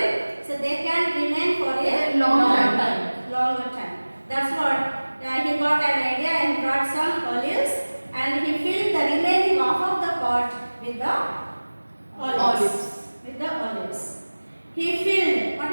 So they can remain for a Long time. longer time. That's what he got an idea and brought some olives and he filled the remaining half of the pot with the olives. With the olives. He filled. What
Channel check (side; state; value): both; inverted; correlation -1.00